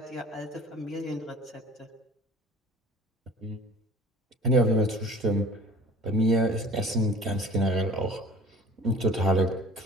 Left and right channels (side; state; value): both; normal; correlation 0.45